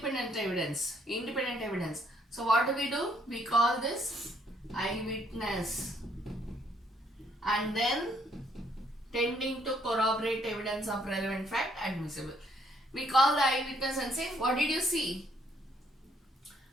evidence. So what do? We call this eyewitness, and then tending to corroborate evidence of relevant fact admissible. We call the eyewitness and say, what did you see?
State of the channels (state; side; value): normal; both; correlation 0.68